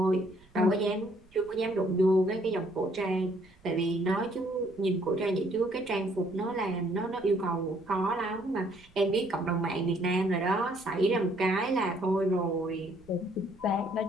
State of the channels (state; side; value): noise; right; rumble, 28 dB below the sound